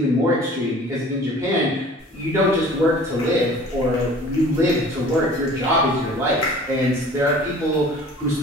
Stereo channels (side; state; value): both; normal; correlation 0.46